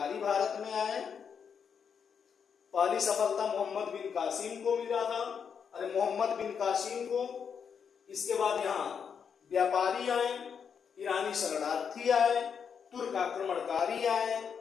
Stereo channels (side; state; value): right; quieter; 6.9 dB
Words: भारत में आए। पहली सफलता मोहम्मद बिन कासिम को मिला था, अरे मोहम्मद बिन कासिम को। इसके बाद यहाँ व्यापारी आए, ईरानी शरणार्थी आए, तुर्क आक्रमणकारी आए,